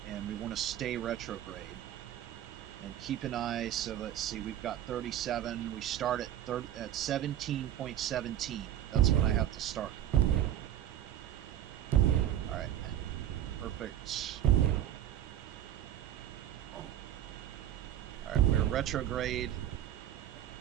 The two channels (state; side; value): quieter; left; 11.5 dB